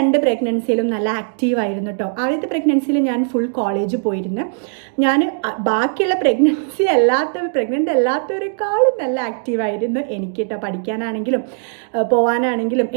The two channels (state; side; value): silent; left; digital silence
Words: പ്രഗ്നൻസിയിലും നല്ല ആക്റ്റീവായിരുന്നു കേട്ടോ. ആദ്യത്തെ പ്രഗ്നൻസിയിൽ ഞാൻ ഫുൾ കോളേജ് പോയിരുന്നു. ഞാൻ ബാക്കിയുള്ള പ്രഗ്നൻ്റ് അല്ലാത്തവരെക്കാളും നല്ല ആക്റ്റീവായിരുന്നു എനിക്ക് കേട്ടോ. പഠിക്കാനാണെങ്കിലും പോകാനാണെങ്കിലും